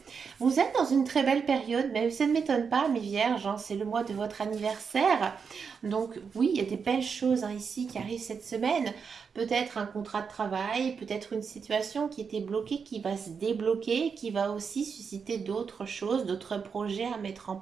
Vous êtes dans une très belle période, mais ça ne m'étonne pas, amis vierges, c'est le mois de votre anniversaire. Donc oui, il y a des belles choses ici qui arrivent cette semaine. Peut-être un contrat de travail, peut-être une situation qui était bloquée, qui va se débloquer, qui va aussi susciter d'autres choses, d'autres projets à mettre en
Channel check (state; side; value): quieter; left; 6.0 dB